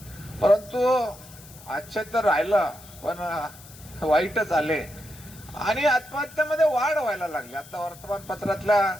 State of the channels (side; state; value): left; noise; hiss, 20 dB below the sound